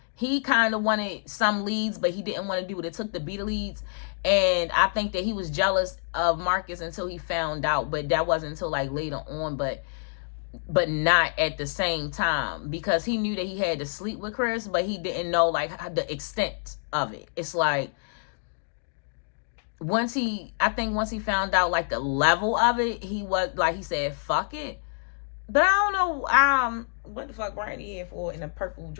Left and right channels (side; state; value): right; silent; digital silence